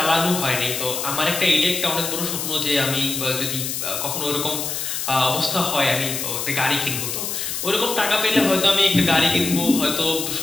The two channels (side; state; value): left; noise; hiss, 3 dB below the sound